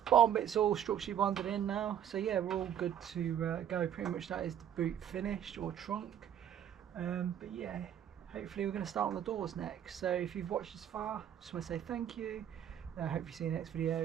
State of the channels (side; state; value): left; quieter; 9.7 dB